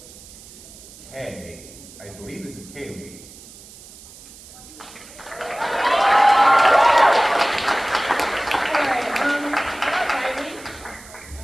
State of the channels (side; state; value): right; noise; hiss, 19 dB below the sound